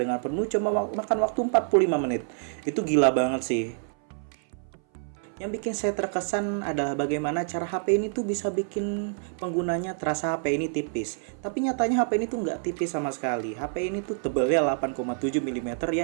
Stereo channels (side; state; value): left; silent; 58 dB below the other